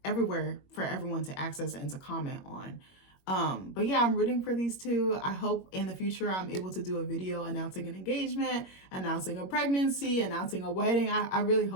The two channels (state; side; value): late; right; 21 ms